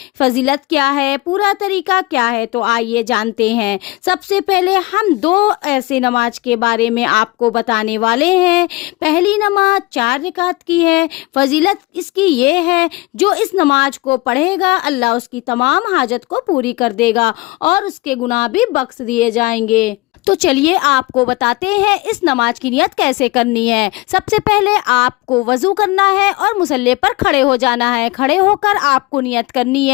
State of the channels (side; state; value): right; quieter; 22.4 dB